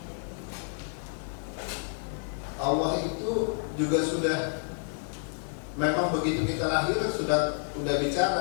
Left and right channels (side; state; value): right; silent; 57 dB below the other